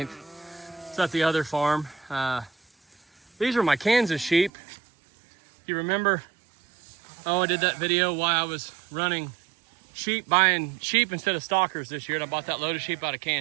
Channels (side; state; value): left; drops out; at 4.5 s